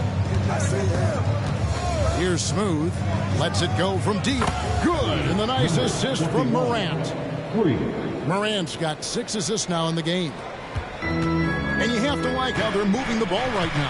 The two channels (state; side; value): identical; both; correlation 1.00